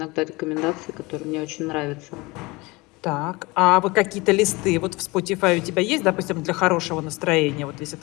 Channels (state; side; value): quieter; right; 23.6 dB